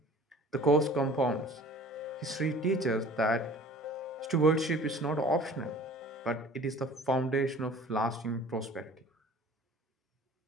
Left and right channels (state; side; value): normal; both; correlation 0.46